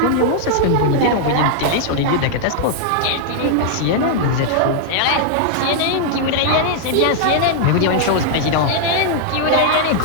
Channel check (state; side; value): different; both; correlation -0.01